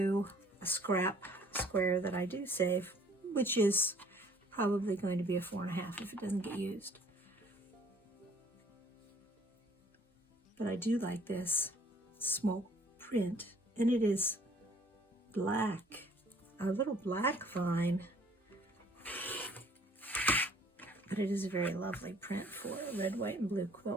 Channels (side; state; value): both; normal; correlation 0.57